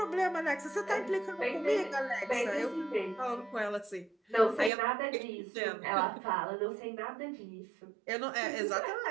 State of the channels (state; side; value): drops out; left; at 4.7 s